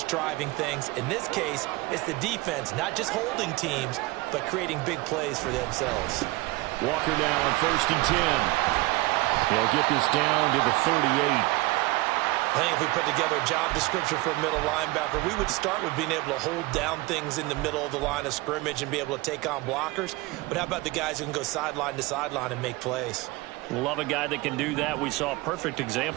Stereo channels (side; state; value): left; quieter; 21.5 dB